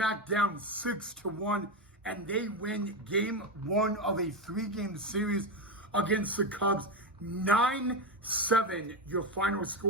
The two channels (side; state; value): both; normal; correlation 0.12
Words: down 6-1, and they win game one of a 3-game series against the Cubs. 9-7, your final